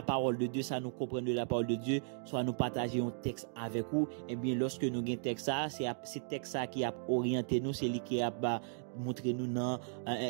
parole de Dieu, ça nous comprendre de la parole de Dieu, soit nous partager un texte avec vous, eh bien, lorsque nous avons un texte ça, c'est texte ça qui a orienté nous, c'est lui qui a montré nous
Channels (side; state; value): left; silent; digital silence